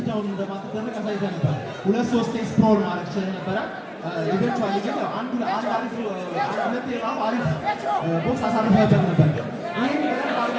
እንደማትደረግ አሳይተህ ነበር 2-3 ስፕሮል ማድረግ ችለህ ነበረ ኢቨንቹዋሊ ግን አንድ አሪፍ ቦክስ አሳርፈህበት ነበር ይህን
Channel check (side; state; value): both; identical; correlation 1.00